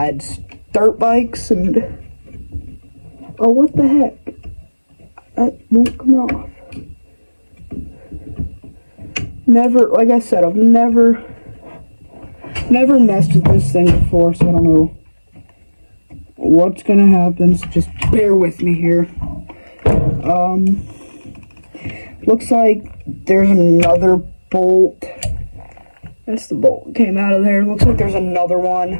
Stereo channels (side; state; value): both; inverted; correlation -1.00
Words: dirt bikes and oh, what the heck? That won't come off. Never, like I said, I've never messed with this thing before, so I don't know what's gonna happen. So just bear with me here. Looks like there's another bolt. That's the bolt that came out of there. Looks like there's another